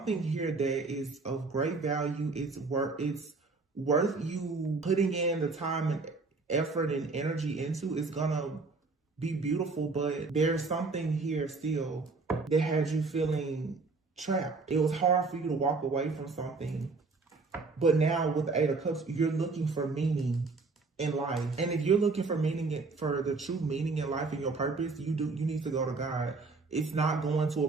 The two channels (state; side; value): quieter; left; 4.0 dB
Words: here that is of great value. It's worth you putting in the time and effort and energy into. It's gonna be beautiful, but there's something here still that has you feeling trapped. It was hard for you to walk away from something. But now with the Eight of Cups, you're looking for meaning in life. And if you're looking for meaning, for the true meaning in life and your purpose, you need to go to God. It's not going to